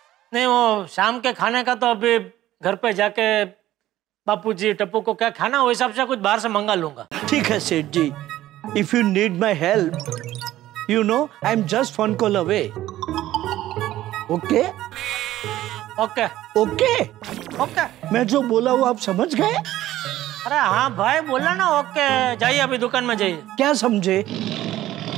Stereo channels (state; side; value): quieter; left; 14.4 dB